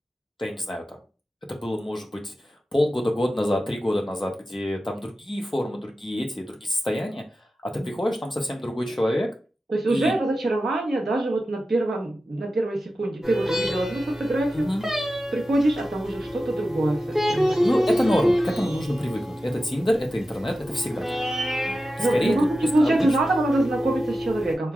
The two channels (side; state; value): both; normal; correlation 0.93